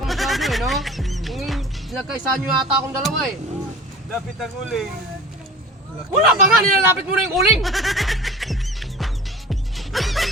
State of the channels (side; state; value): both; normal; correlation 0.40